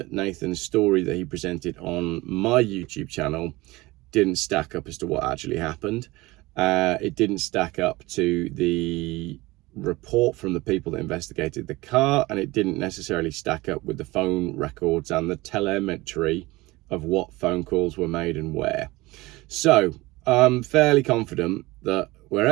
Nathan's story that he presented on my YouTube channel didn't stack up as to what actually happened. It didn't stack up to the report from the people that investigated the car, and it didn't necessarily stack up with the phone records and the telemetry of what phone calls were made and where. So I'm fairly confident that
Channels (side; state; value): left; quieter; 20.9 dB